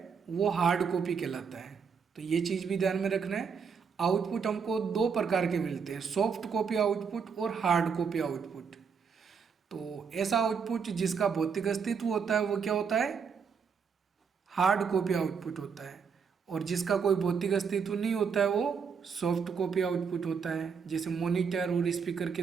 वो हार्ड कॉपी कहलाता है। तो ये चीज़ भी ध्यान में रखना है, आउटपुट हमको दो प्रकार के मिलते हैं, सॉफ्ट कॉपी आउटपुट और हार्ड कॉपी आउटपुट। तो ऐसा आउटपुट जिसका भौतिक अस्तित्व होता है वो क्या होता है? हार्ड कॉपी आउटपुट होता है, और जिसका कोई भौतिक अस्तित्व नहीं होता है वो सॉफ्ट कॉपी आउटपुट होता है, जैसे मॉनिटर और स्पीकर के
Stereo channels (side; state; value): left; quieter; 6.2 dB